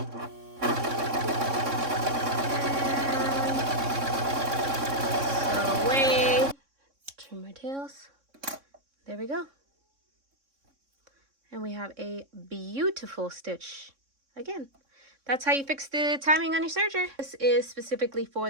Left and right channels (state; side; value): late; left; 3.6 ms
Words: Sew away. Trim my tails. There we go. And we have a beautiful stitch. Again, that's how you fix the timing on your serger. This is specifically